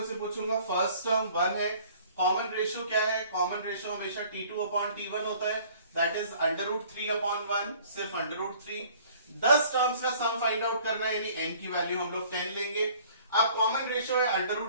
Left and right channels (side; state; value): both; inverted; correlation -0.53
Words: से पूछूंगा, फर्स्ट टर्म 1 है, कॉमन रेशियो क्या है? कॉमन रेशियो हमेशा T2/T1 होता है, दैट इज √3/1, सिर्फ √3। 10 टर्म्स का सम फाइंड आउट करना है, यानी n की वैल्यू हम लोग 10 लेंगे। अब कॉमन रेशियो है